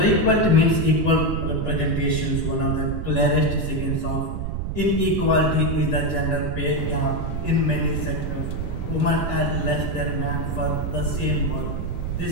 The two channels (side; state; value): right; noise; rumble, 3 dB below the sound